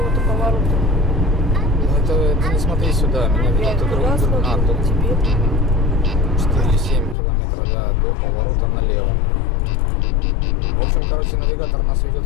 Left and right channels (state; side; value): drops out; right; at 7.2 s